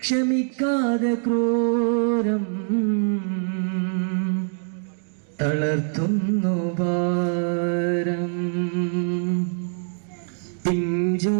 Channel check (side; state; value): left; silent; 63 dB below the other